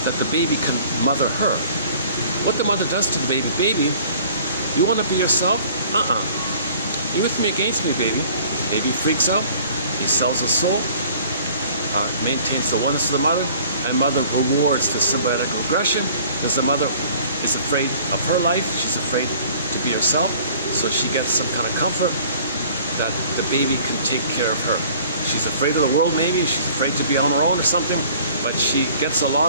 that the baby can mother her, what the mother does to the baby, you want to be yourself? You with me against me, baby. Baby freaks out, he sells his soul, maintains the oneness of the mother, and mother rewards the symbiotic regression because the mother is afraid of her life, she's afraid to be herself, so she gets some kind of comfort that the baby can take care of her. She's afraid of the world maybe, she's afraid to be on her own or something, but she gets a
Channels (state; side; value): inverted; both; correlation -0.52